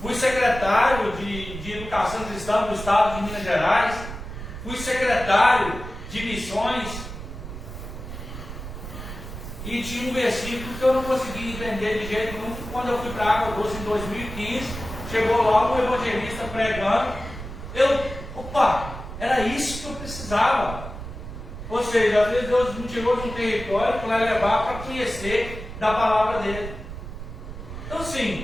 fui secretário de Educação Cristã do Estado de Minas Gerais, fui secretário de missões, e tinha um versículo que eu não conseguia entender de jeito nenhum. Quando eu fui para a Água Doce em 2015, Chegou lá um evangelista pregando, opa, era isso que eu precisava. Ou seja, às vezes Deus me tirou de um território para levar para conhecer da palavra dele. Então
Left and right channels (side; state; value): right; noise; rumble, 10 dB below the sound